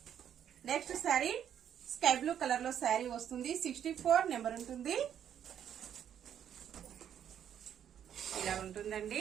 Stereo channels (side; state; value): left; quieter; 9.4 dB